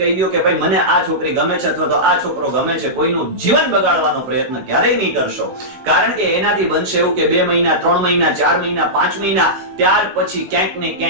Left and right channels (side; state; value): left; late; 16 ms